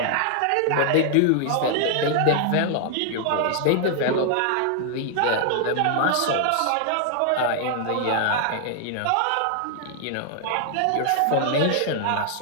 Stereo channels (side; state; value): both; different; correlation 0.00